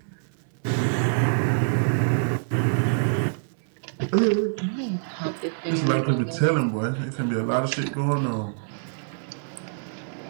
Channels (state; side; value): silent; left; 61 dB below the other